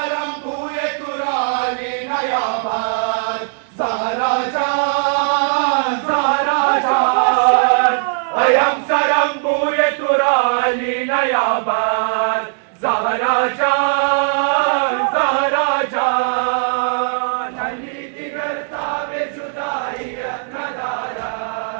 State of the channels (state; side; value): silent; left; digital silence